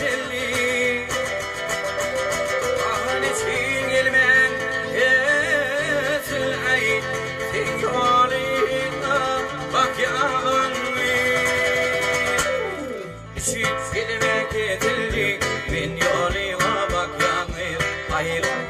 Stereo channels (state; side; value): identical; both; correlation 1.00